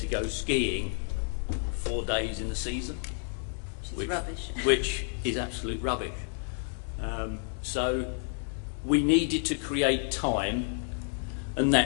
go skiing 4 days in the season, which is rubbish. Which is absolute rubbish. So we needed to create time, and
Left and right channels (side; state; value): right; silent; 58 dB below the other